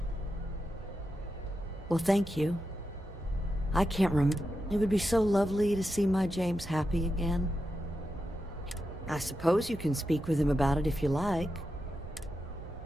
Well, thank you. I can't remember. It would be so lovely to see my James happy again. I suppose you can speak with him about it if you like.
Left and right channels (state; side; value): normal; both; correlation 0.88